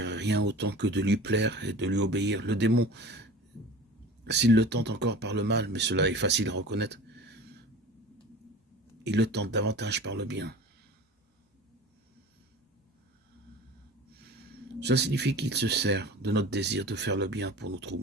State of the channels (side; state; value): both; normal; correlation 0.38